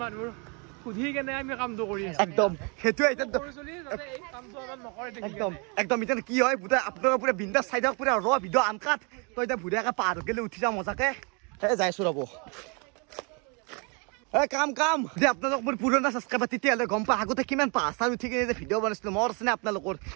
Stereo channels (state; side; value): quieter; left; 33.5 dB